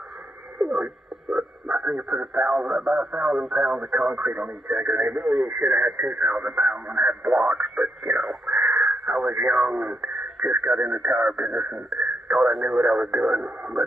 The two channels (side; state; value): both; normal; correlation 0.79